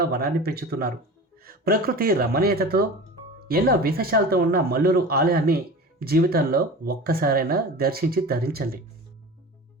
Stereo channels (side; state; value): both; normal; correlation 0.34